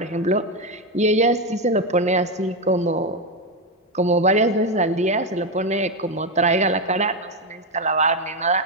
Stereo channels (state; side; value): normal; both; correlation 0.09